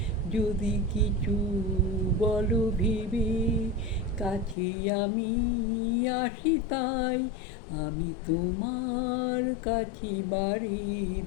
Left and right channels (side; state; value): right; drops out; at 4.5 s